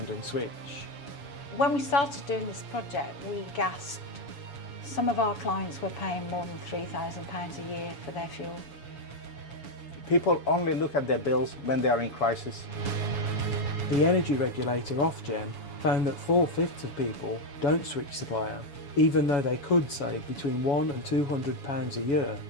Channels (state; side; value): late; right; 7.1 ms